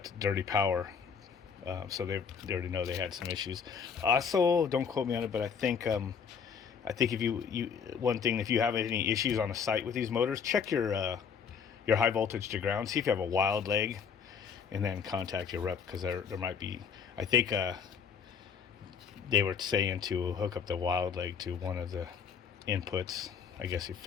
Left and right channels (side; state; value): right; quieter; 6.7 dB